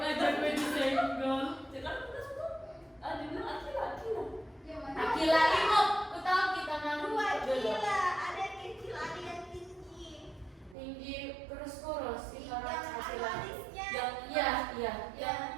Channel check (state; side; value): drops out; left; at 10.8 s